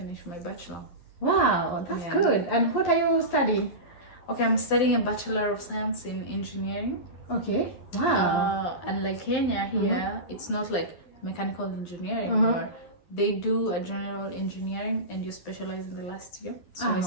my bachelor. Wow, that's good. And what are you studying? Okay, I'm studying a Bachelor of Science in Engineering. Okay. Wow. And like Kenya here, it's not like mechanical engineering or they do a general engineering and you specialize in the last year. So I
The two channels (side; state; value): right; late; 11 ms